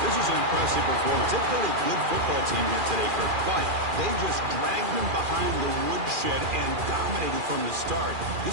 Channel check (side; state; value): left; late; 2.4 ms